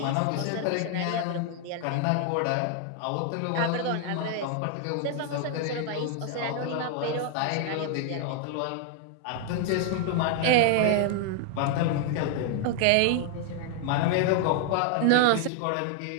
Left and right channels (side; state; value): both; different; correlation 0.00